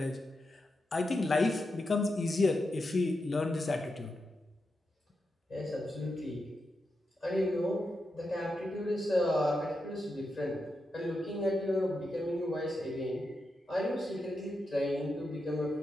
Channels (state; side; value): normal; both; correlation 0.87